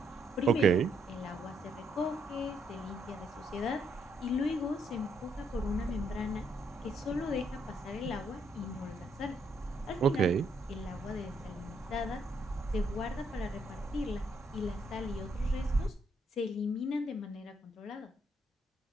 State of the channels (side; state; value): both; normal; correlation 0.74